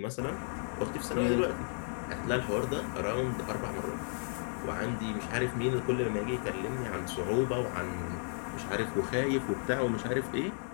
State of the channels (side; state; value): right; silent; 55 dB below the other